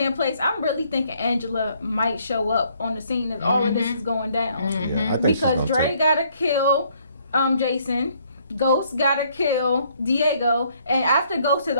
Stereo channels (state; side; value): inverted; both; correlation -0.66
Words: placed, I'm really thinking Angela might show up on the scene as all of this is going down. Yeah, I think Because so, Dre too. gotta kill Jason. Ghost gotta kill Diego, and after Ghost has